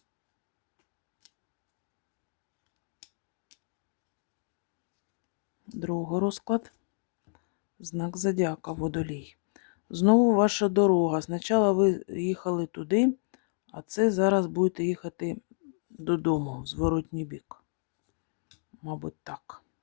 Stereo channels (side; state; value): right; silent; digital silence